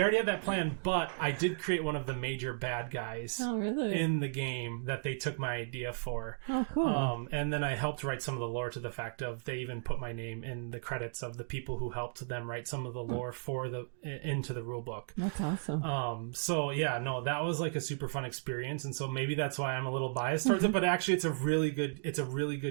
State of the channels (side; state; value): left; silent; digital silence